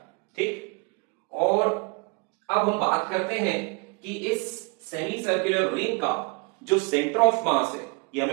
ठीक, और अब हम बात करते हैं कि इस सेमी सर्कुलर रिंग का जो सेंटर ऑफ मास है, ये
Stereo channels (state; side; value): quieter; left; 31.8 dB